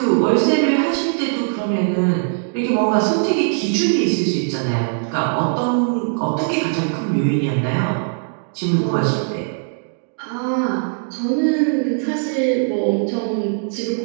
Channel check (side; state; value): left; silent; digital silence